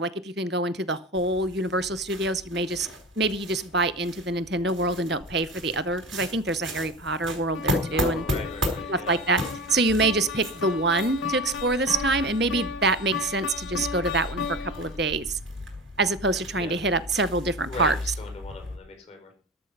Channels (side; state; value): both; normal; correlation 0.30